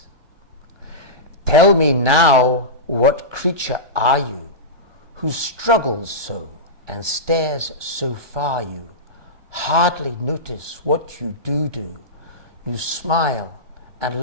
Tell me now, what creature are you who struggles so and stares so far you hardly notice what you do. You smile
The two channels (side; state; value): left; late; 1.2 ms